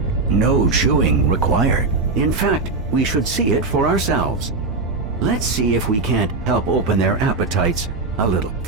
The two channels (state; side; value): quieter; left; 3.7 dB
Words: No chewing required. In fact, we should see it for ourselves. Let's see if we can't help open their appetites A little.